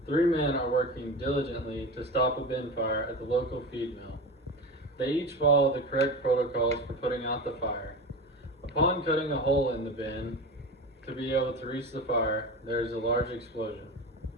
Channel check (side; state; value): both; normal; correlation 0.27